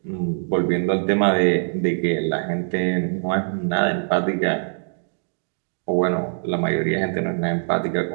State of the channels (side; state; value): left; silent; digital silence